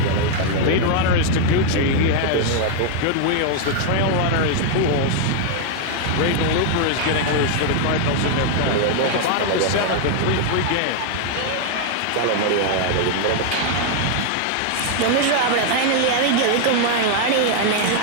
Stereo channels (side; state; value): both; different; correlation 0.00